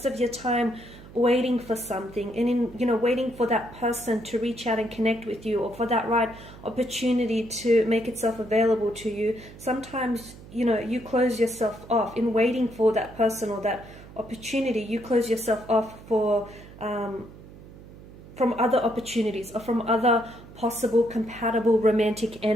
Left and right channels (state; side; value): noise; right; hum, 18 dB below the sound